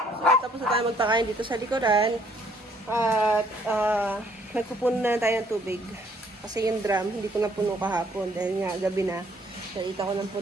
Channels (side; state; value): both; normal; correlation 0.64